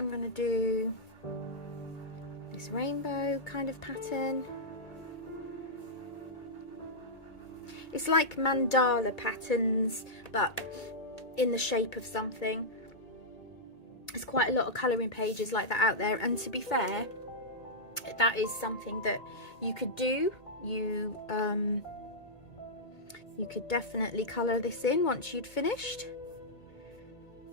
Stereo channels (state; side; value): late; right; 2.2 ms